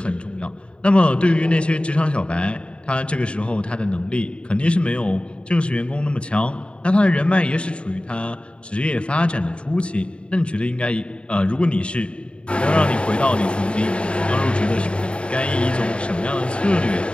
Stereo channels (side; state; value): right; late; 0.056 ms